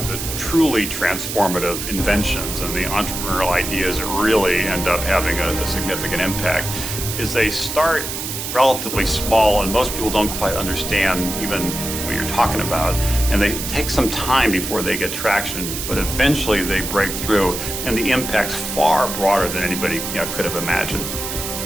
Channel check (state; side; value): noise; right; hiss, 5 dB below the sound